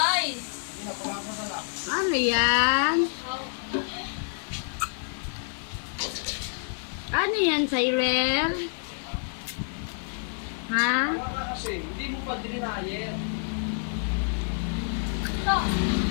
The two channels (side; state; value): right; silent; digital silence